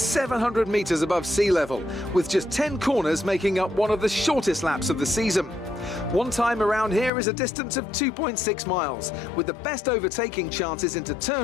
metres above sea level, with just 10 corners making up one of the shortest laps of the season. One time around here is a distance of 2.6 miles, with the best overtaking chances into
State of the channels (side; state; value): right; drops out; at 7.1 s